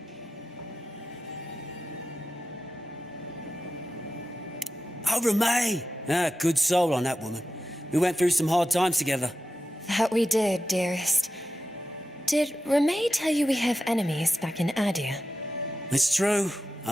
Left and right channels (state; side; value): normal; both; correlation 0.91